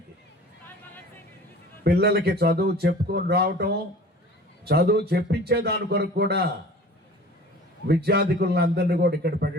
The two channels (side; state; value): both; normal; correlation 0.43